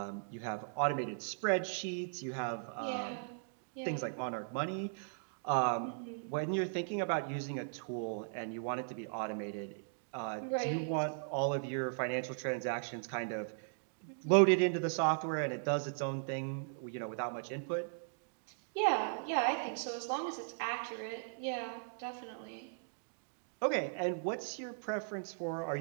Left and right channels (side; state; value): left; silent; digital silence